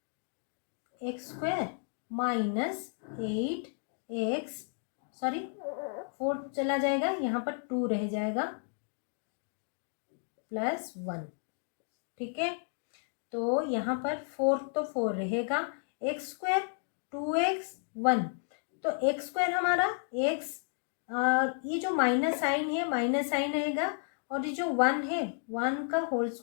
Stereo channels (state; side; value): silent; right; 56 dB below the other